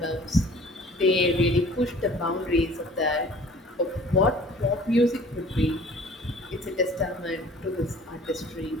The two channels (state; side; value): normal; both; correlation 0.49